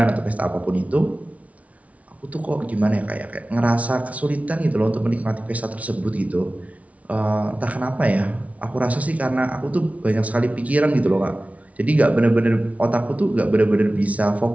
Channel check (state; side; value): late; left; 0.067 ms